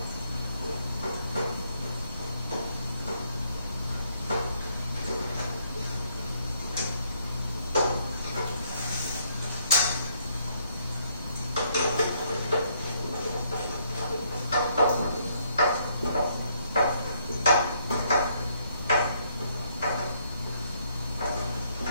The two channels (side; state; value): both; inverted; correlation -0.70